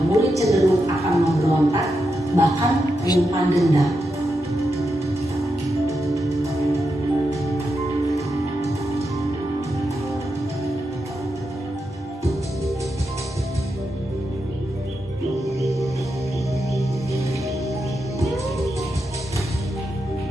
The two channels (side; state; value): both; normal; correlation 0.86